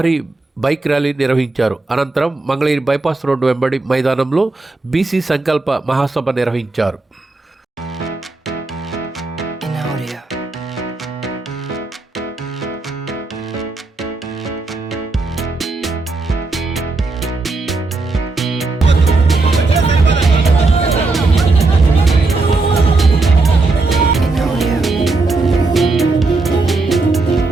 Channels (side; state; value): left; quieter; 3.5 dB